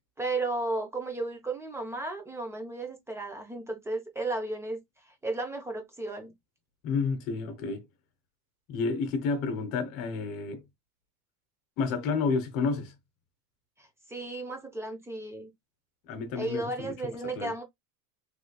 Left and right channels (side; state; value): both; normal; correlation 0.48